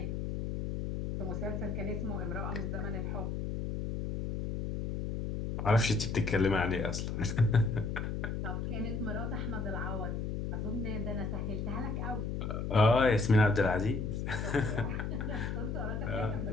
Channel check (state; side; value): noise; left; hum, 3 dB below the sound